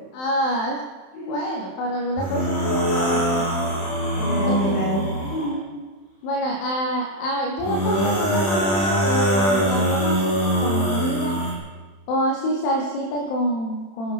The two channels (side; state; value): right; late; 31 ms